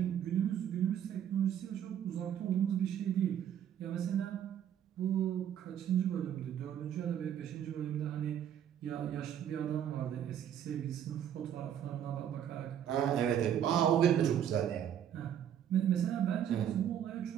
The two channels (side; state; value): left; quieter; 9.7 dB